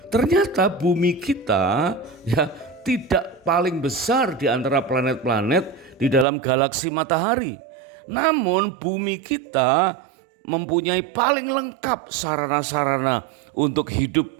ternyata bumi kita, ya, tidak paling besar di antara planet-planet di dalam galaksi matahari. Namun bumi kita mempunyai paling lengkap sarana-sarana untuk hidup,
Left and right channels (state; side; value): drops out; left; at 6.2 s